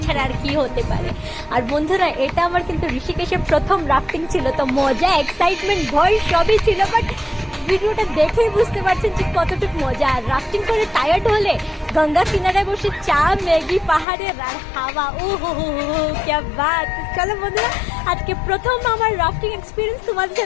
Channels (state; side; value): drops out; right; at 14.1 s